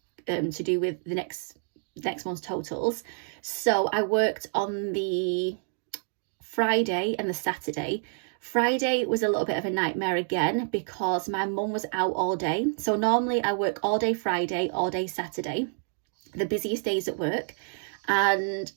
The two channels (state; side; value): silent; left; digital silence